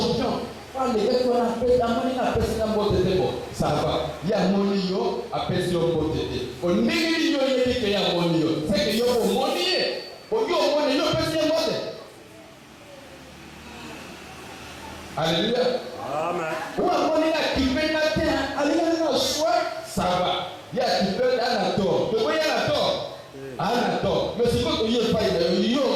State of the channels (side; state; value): both; identical; correlation 1.00